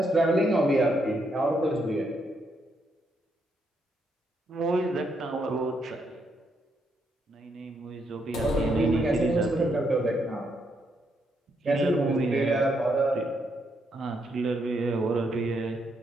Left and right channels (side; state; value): both; normal; correlation 0.77